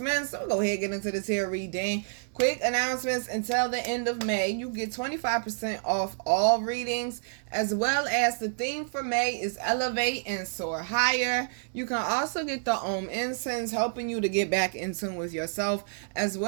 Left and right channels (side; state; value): left; silent; 59 dB below the other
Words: So we'll go ahead and get into this here reading. Quick announcements: until the end of May, you get 25% off all readings, as well as the theme for May is Elevate and Soar Higher. You can also get the incense, helping you to get back in tune with yourself, as